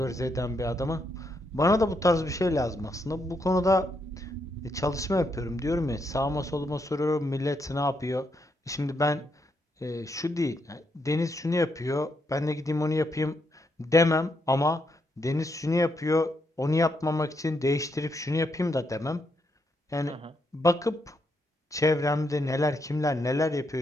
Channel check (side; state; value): both; normal; correlation 0.78